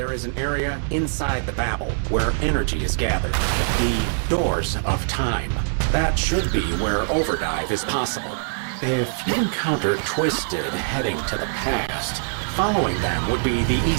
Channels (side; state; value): left; silent; digital silence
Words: is an area inside the Babel where energy is gathered. The Doors of Time. That should be where overdrive is possible. If you encounter Twisted heading to the past, following them would be the